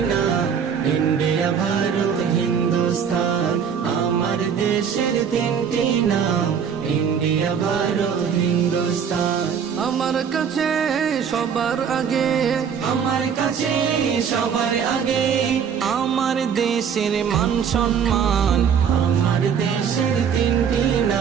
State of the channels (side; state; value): left; quieter; 7.3 dB